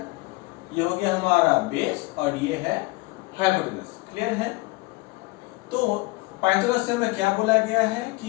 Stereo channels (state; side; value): quieter; right; 23.4 dB